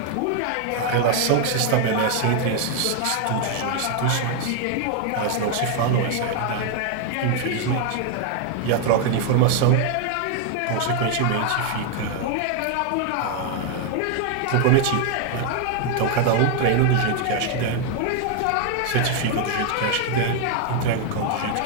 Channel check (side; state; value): both; different; correlation 0.00